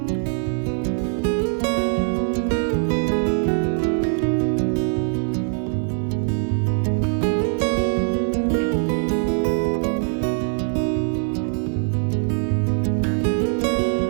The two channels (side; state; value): left; silent; digital silence